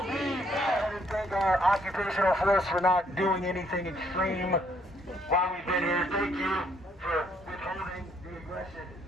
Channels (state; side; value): normal; both; correlation 0.68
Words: be back. And thank our occupational force for not doing anything extreme while we've been here. Thank you for for withholding the aggression.